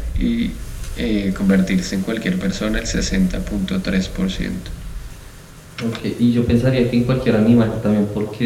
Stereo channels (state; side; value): identical; both; correlation 1.00